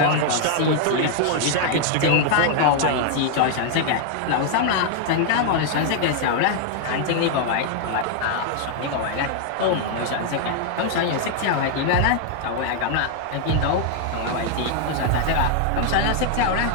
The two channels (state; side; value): different; both; correlation 0.00